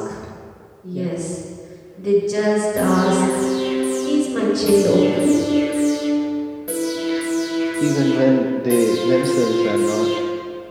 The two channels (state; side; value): identical; both; correlation 1.00